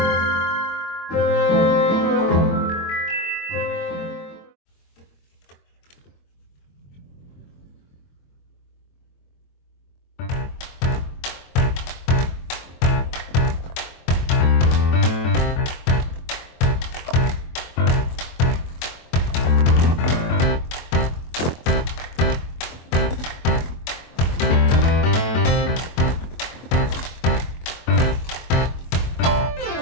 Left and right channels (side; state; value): right; late; 23 ms